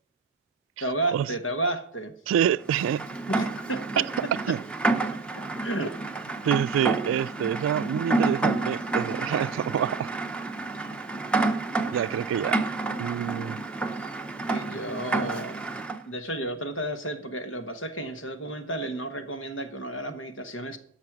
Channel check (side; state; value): left; quieter; 4.5 dB